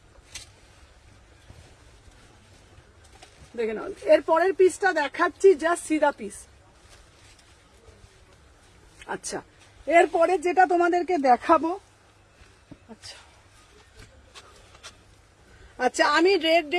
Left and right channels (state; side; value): identical; both; correlation 1.00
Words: দেখে নাও এর পরের পিসটা দেখাচ্ছি জাস্ট সিধা পিস আচ্ছা এরপরে যেটা তোমাদেরকে দেখাবো আচ্ছা আমি রেড